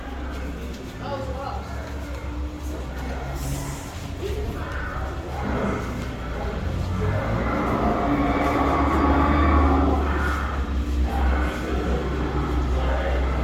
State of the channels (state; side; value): identical; both; correlation 1.00